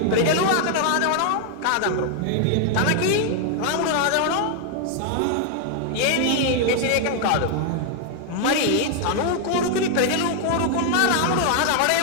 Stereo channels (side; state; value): both; different; correlation 0.00